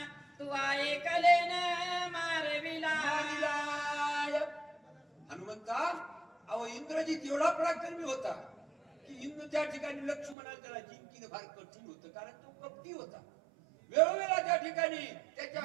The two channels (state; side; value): drops out; left; at 10.4 s